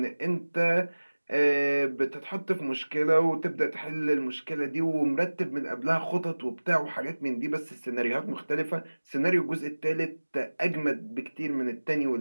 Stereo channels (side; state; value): both; inverted; correlation -1.00